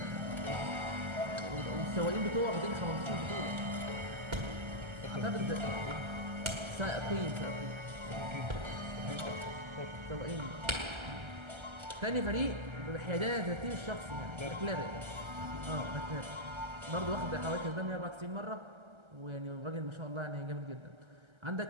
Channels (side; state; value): left; late; 1.3 ms